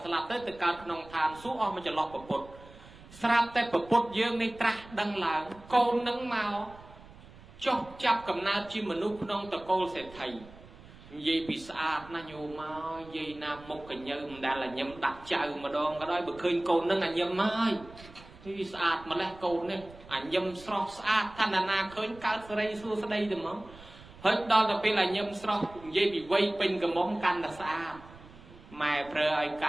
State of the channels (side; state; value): right; noise; rumble, 20 dB below the sound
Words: ស្លាប់ទៅកើតក្នុងឋានសួគ៌អស់មកចន្លោះប្រពុតស្រាប់តែប្រពុតយើងនេះត្រាស់ដឹងឡើងកូននឹងមកចុះចាប់កំណើតជាមនុស្សក្នុងតកូលសេដ្ឋីនិយាយពីស្អាតណាស់ញោមមកនិយាយណាមុខកញើមិនដែលញឹមដាក់ចៅម្ដងក៏ដោយបើឃើញកូននឹងញឹមហើយទីស្អាតម្លេះកូននេះញឹមស្រស់ស្អាតថាណាឃើញកើតសេរីសួស្ដីទៅមកហើយដល់ទៅពេលញឹមស្រស់និយាយពីវ័យពេញកំមុំកាន់តែស្អាតម៉ែប្រើឲ្យក